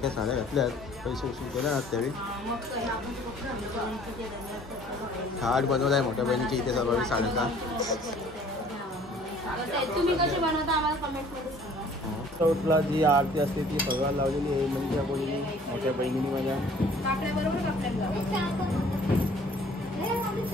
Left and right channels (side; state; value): both; normal; correlation 0.54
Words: साड्या घातल्यात पैसे उसूल केले ना त्यावेळी. थाट बनवलाय मोठ्या बहिणीची इथे सर्व साड्याचा. तुम्ही कसे बनवता आम्हाला कमेंटमध्ये सांगा. चौथला जी आरती असते ती सगळं लावलेली आहे म्हणजे बोलली मोठ्या बहिणीने माझ्या.